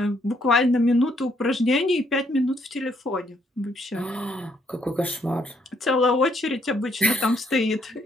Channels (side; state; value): both; normal; correlation 0.72